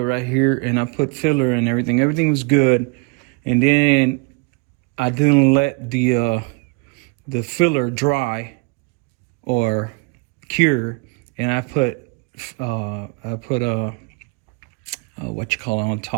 right here, and I put filler and everything. Everything was good, and then I didn't let the filler dry or cure, and I put what you call it on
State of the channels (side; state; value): left; quieter; 29.6 dB